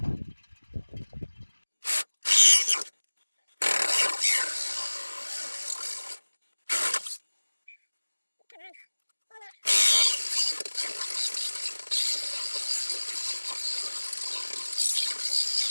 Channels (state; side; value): inverted; both; correlation -1.00